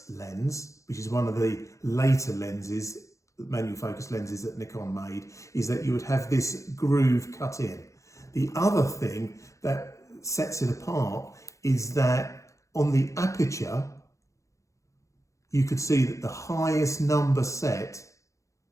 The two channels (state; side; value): late; right; 0.15 ms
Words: lens, which is one of the later lenses, manual focus lenses that Nikon made, is that you would have this groove cut in. The other thing that sets it apart is that on the aperture, you could see that the highest number set,